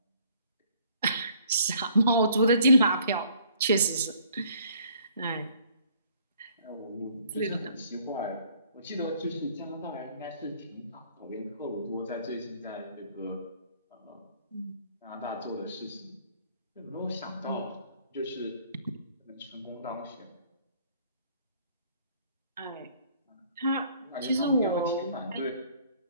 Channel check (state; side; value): inverted; both; correlation -0.59